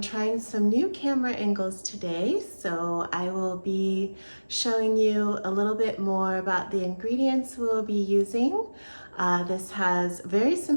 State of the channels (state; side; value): inverted; both; correlation -1.00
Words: trying some new camera angles today, so I will be showing you a little bit more about the ingredients we'll be using. This has very